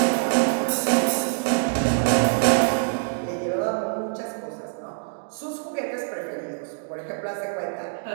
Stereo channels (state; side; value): silent; left; digital silence